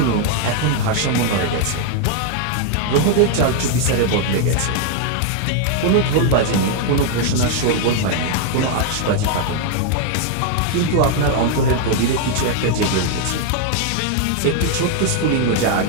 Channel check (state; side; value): different; both; correlation 0.00